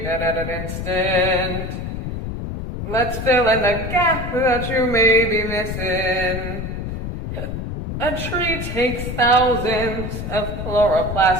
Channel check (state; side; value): noise; left; rumble, 5 dB below the sound